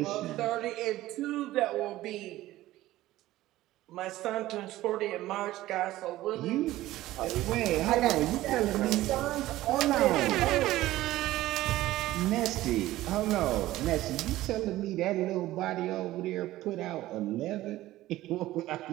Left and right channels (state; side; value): quieter; left; 15.9 dB